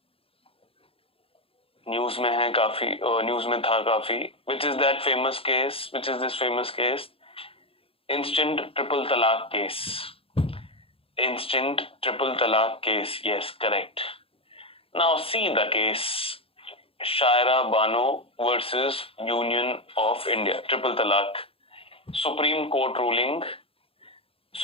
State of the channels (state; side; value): late; right; 0.27 ms